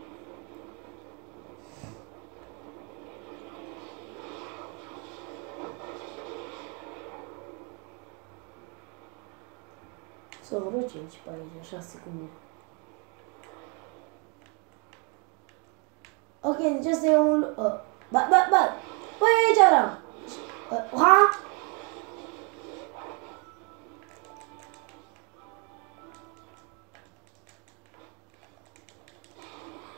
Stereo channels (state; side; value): quieter; left; 34.9 dB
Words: Să vreo 5 pe aici, 6 cu mine. Ok, deci asta e un... Băi, aici vreau! Ha?